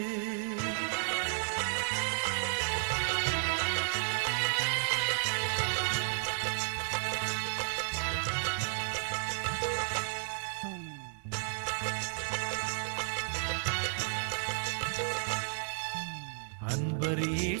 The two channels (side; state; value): left; silent; digital silence